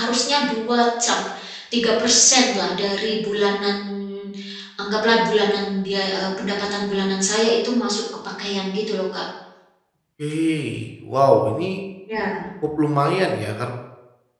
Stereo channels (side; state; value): both; identical; correlation 1.00